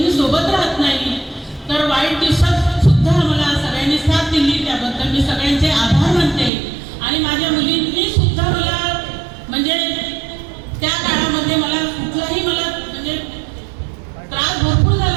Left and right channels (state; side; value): drops out; left; at 6.5 s